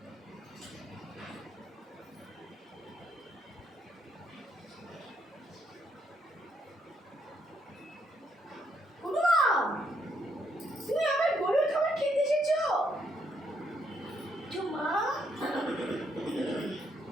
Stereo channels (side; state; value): both; normal; correlation 0.75